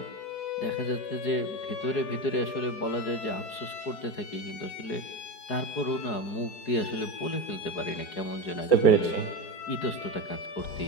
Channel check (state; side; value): late; right; 4.7 ms